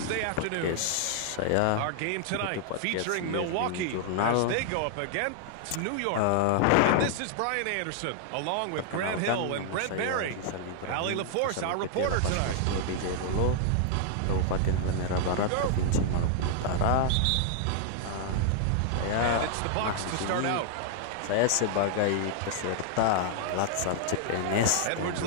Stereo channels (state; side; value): different; both; correlation 0.00